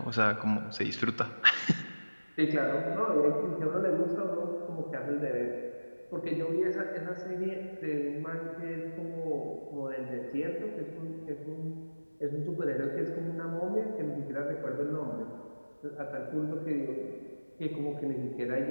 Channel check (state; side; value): inverted; both; correlation -1.00